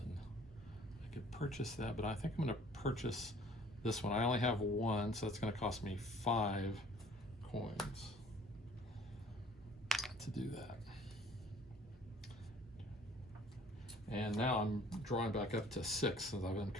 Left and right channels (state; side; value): normal; both; correlation 0.54